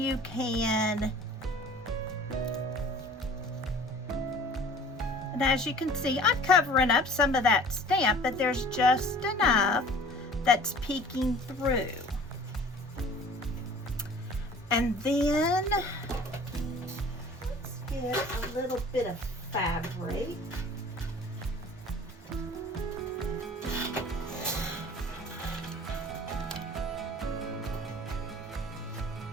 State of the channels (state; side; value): normal; both; correlation 0.47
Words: can, and as you can see, I'm covering up some of that stamp, but there's just enough that's peeking through. And then, let's get a little bit of fabric.